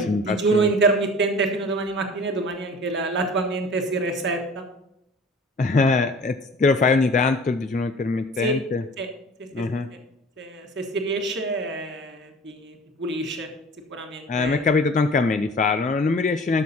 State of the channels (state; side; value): normal; both; correlation 0.45